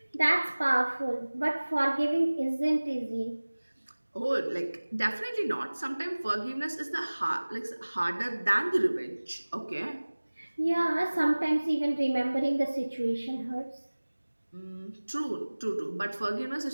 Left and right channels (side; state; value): both; inverted; correlation -1.00